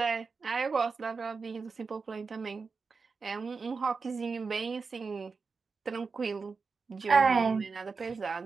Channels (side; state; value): left; quieter; 4.8 dB